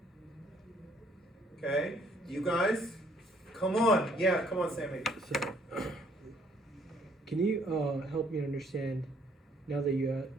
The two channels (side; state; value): both; normal; correlation 0.64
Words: Okay. You guys? Come on. Yeah, come on, Sammy. So, can you help me understand, now that you,